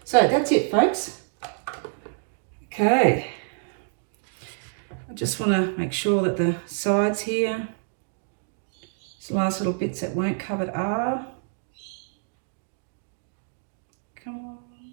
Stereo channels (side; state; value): left; silent; digital silence